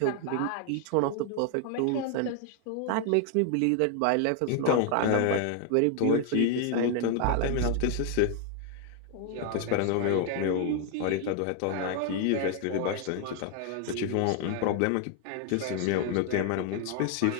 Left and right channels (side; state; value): both; different; correlation 0.00